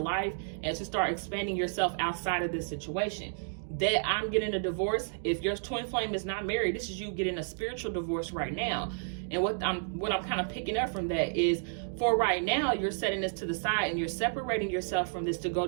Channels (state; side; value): silent; left; digital silence